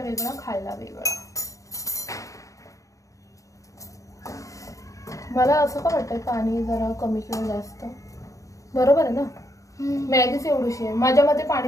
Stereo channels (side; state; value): right; late; 0.16 ms